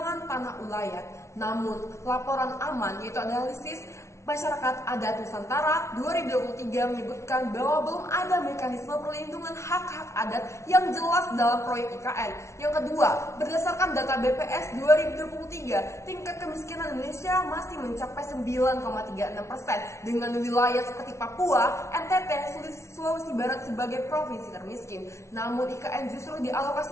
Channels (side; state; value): right; late; 0.13 ms